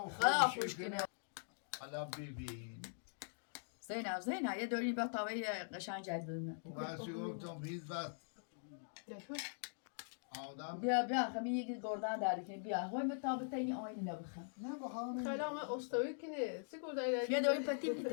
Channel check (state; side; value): silent; right; digital silence